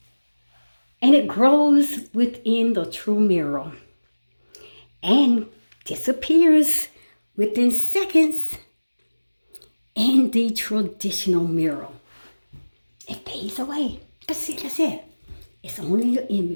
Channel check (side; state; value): both; inverted; correlation -1.00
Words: And it grows within the true mirror and disappears within seconds in the traditional mirror. It fades away. That's it. It's only your